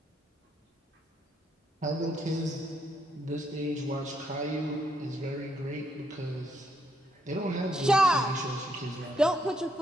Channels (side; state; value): both; normal; correlation 0.75